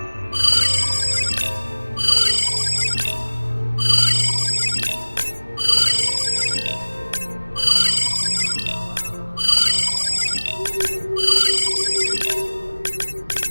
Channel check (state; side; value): inverted; both; correlation -1.00